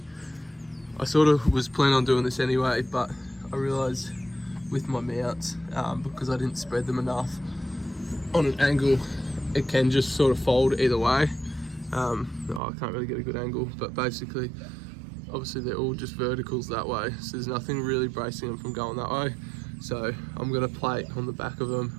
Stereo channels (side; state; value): left; drops out; at 12.6 s